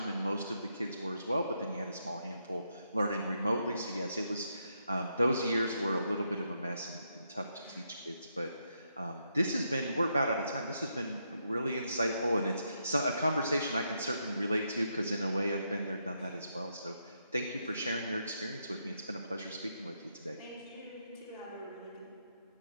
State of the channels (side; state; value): both; inverted; correlation -0.79